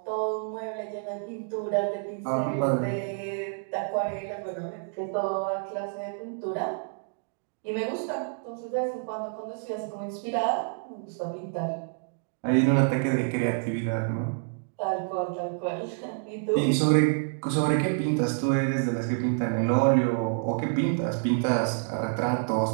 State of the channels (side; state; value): left; silent; digital silence